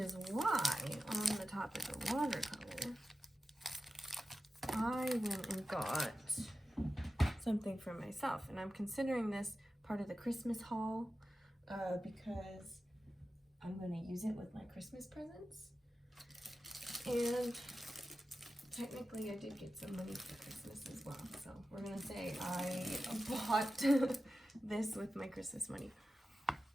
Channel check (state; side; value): normal; both; correlation 0.93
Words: why, on the topic of watercolor, I went and got something for myself. And I'm considering this part of the Christmas haul because I'm going to use it with my Christmas presents. And technically I did get some money for Christmas as well. So we're gonna say I bought this with my Christmas money.